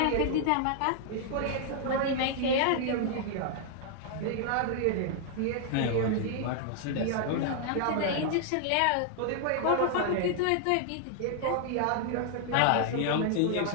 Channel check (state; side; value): different; both; correlation 0.00